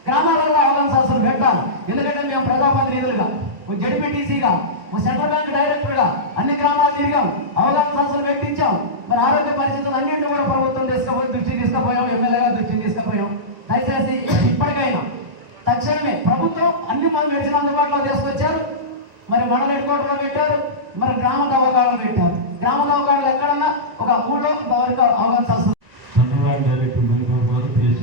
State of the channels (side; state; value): left; late; 1.3 ms